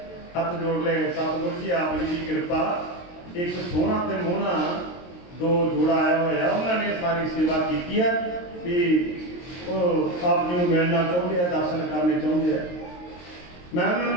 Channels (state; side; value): late; right; 23 ms